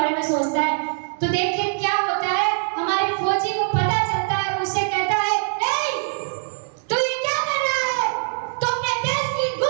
में सोचता है। तो देखिए क्या होता है, हमारे फौजी को पता चलता है और उससे कहता है, ए, तू ये क्या कर रहा है? तो अपने देश की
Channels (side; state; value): left; silent; digital silence